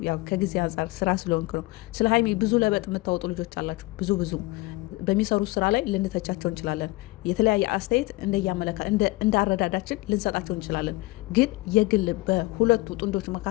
ያው ከጊዜ አንጻር ስራ ስለሆንክ ነው። ስለ ሀይሚ ብዙ ለበጥ የምታወጡ ልጆች አላችሁ። ብዙ በሚሰሩት ስራ ላይ ልንተቻቸው እንችላለን። የተለያየ አስተያየት እንዳረዳዳችን ልንሰጣቸው እንችላለን። ግን የግል በሁለቱ ጥንዶች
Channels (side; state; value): right; quieter; 21.6 dB